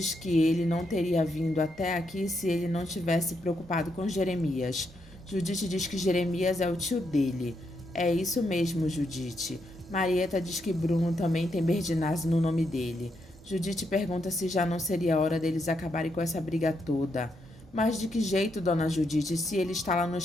que ele não teria vindo até aqui se ele não tivesse preocupado com Jeremias. Judite diz que Jeremias é o tio dele. É isso mesmo, Judite. Marieta diz que Bruno também tem Berginazzi no nome dele. Judite pergunta se já não seria hora deles acabarem com essa briga toda. Mas de que jeito, dona Judite, se ele está lá no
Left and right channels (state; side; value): normal; both; correlation 0.79